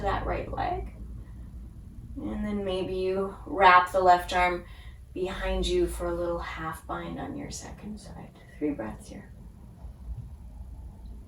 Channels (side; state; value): both; identical; correlation 1.00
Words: that right leg. And then maybe you wrap the left arm behind you for a little half bind on your second side. 3 breaths here.